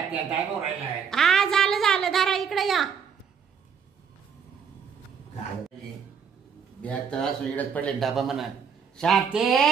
टाइम हो राहिलाय. हा झालं झालं, धरा इकडे या. बॅग तर असं इडच पडले डबा म्हणा. शांती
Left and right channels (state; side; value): quieter; left; 6.9 dB